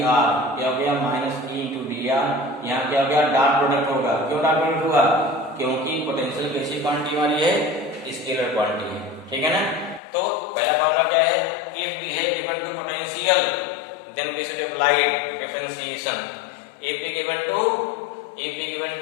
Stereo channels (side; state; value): right; drops out; at 10.0 s